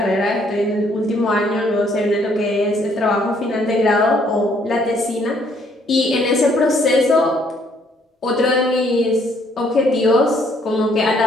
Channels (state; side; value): normal; both; correlation 0.66